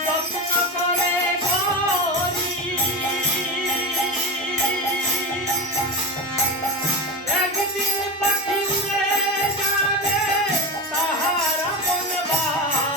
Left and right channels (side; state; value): both; normal; correlation 0.22